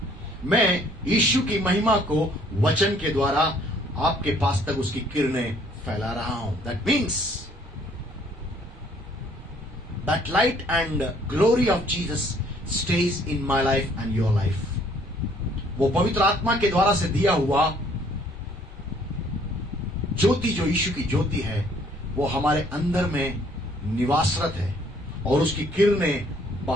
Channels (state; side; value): normal; both; correlation 0.61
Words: मैं यीशु की महिमा को वचन के द्वारा आपके पास तक उसकी किरणें फैला रहा हूं. That means that light and glory of Jesus stays in my life and your life. वो पवित्र आत्मा के द्वारा से दिया हुआ ज्योति, जो यीशु की ज्योति है, वो हमारे अंदर में निवासरत है और उसकी किरणें